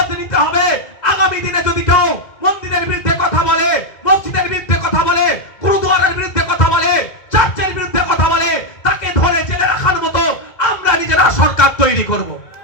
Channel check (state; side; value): late; right; 2.0 ms